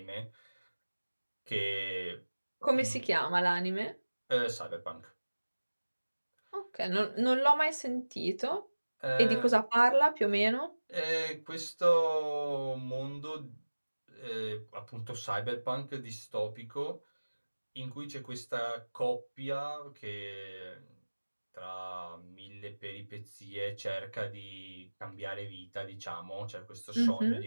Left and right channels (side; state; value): both; inverted; correlation -1.00